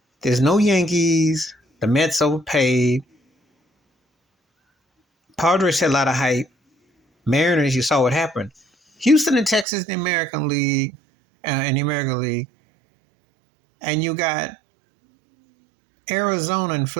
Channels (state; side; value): drops out; left; at 9.7 s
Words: There's no Yankees. The Mets overpaid. Padres had a lot of hype. Mariners, you saw what happened. Houston and Texas in the American League, and you got Arizona and